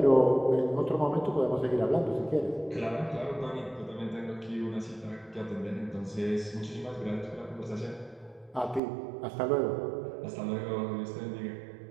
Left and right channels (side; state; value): left; drops out; at 8.8 s